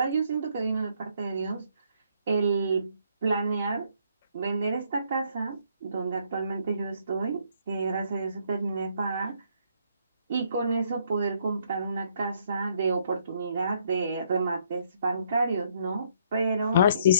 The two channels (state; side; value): inverted; both; correlation -0.69